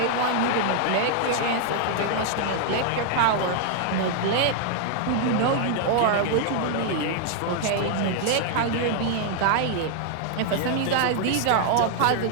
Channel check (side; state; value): both; different; correlation -0.01